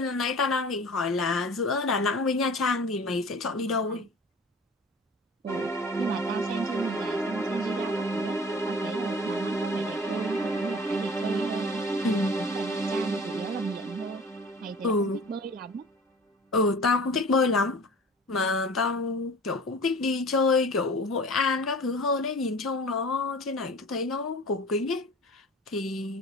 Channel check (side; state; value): both; normal; correlation 0.44